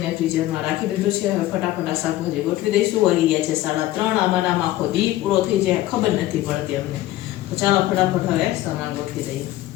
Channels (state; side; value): quieter; right; 15.3 dB